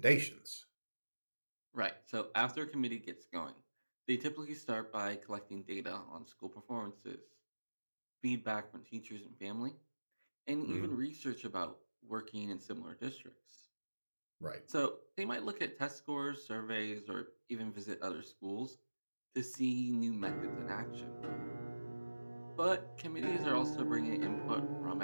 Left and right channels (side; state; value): both; inverted; correlation -1.00